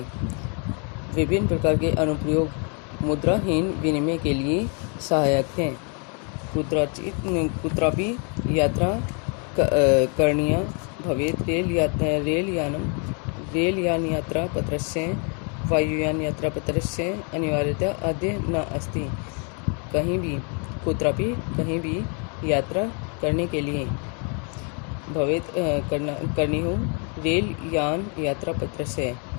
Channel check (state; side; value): quieter; right; 37.6 dB